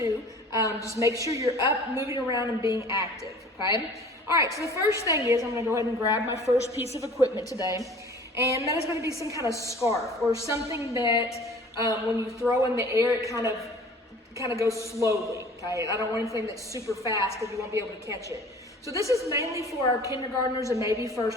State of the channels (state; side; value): normal; both; correlation 0.47